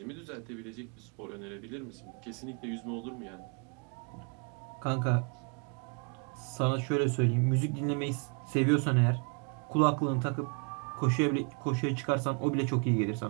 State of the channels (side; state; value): left; quieter; 37.4 dB